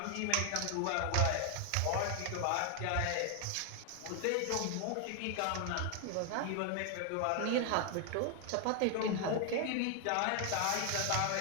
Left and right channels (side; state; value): both; different; correlation 0.00